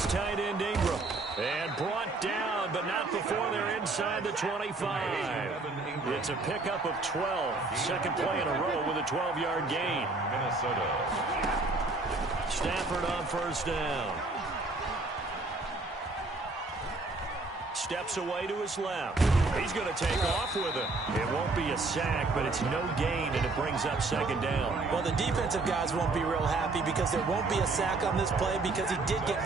tight end Ingram. And brought down, but not before they're inside the 25. It's a pickup of 12. Second play in a row with a 12-yard gain. Minnesota. Stafford on 1st down. Steps away to his left. He's going to take off with it. It won't be a sack, but it's no gain, and it brings up 2nd down. Well, the defensive guys won't be real happy because there won't be a sack on this play because he did get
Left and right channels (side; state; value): left; quieter; 3.4 dB